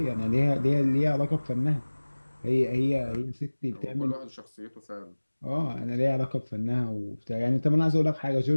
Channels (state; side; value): inverted; both; correlation -1.00